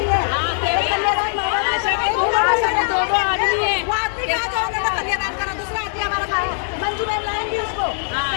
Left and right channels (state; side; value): silent; right; 65 dB below the other